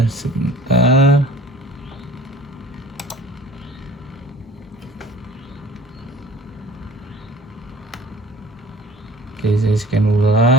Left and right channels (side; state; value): both; normal; correlation 0.48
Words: Sebentar. Oke, saya scan